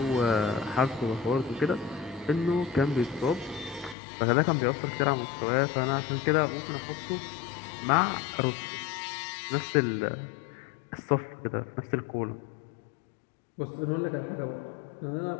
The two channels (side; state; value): right; drops out; at 4.0 s